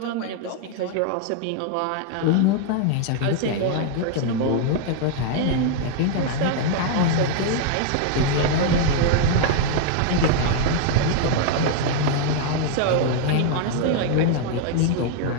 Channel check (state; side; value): different; both; correlation 0.00